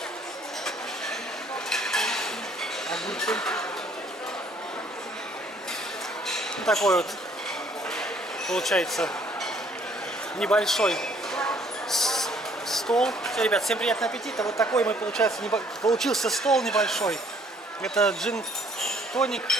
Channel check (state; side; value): normal; both; correlation 0.62